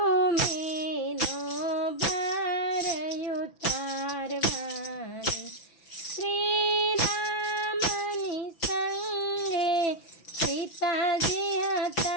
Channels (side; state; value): right; late; 6.0 ms